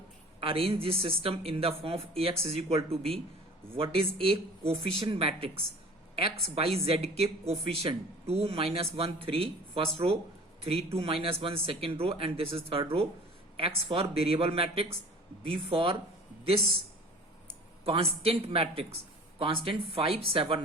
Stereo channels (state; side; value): normal; both; correlation 0.44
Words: arrange this system in the form of ax is equal to b. What is a coefficient matrix? x by z के coefficient 2 minus 1 3 first row, 3 2 minus 1 second row, and this is third row. x for variable matrix, b for this constant matrix, constant 5